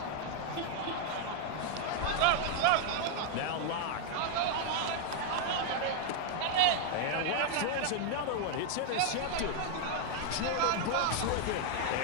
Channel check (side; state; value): both; different; correlation 0.00